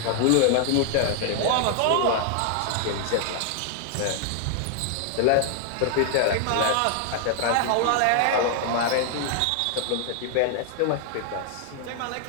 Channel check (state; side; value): different; both; correlation 0.00